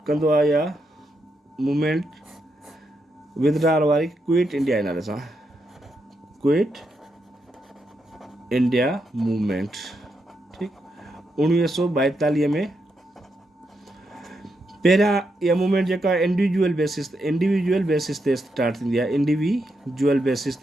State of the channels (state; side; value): normal; both; correlation 0.83